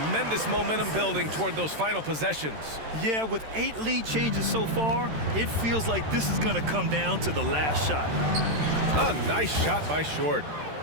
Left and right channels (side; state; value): left; late; 13 ms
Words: momentum building toward those final possessions. Yeah, with 8 lead changes so far, it feels like this is going to come down to the last shot. A nice shot by Short.